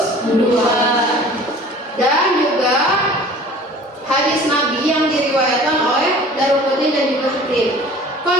dan juga hadis Nabi yang diriwayatkan oleh Daruqutni dan juga Hakim.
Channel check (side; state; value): both; normal; correlation 0.46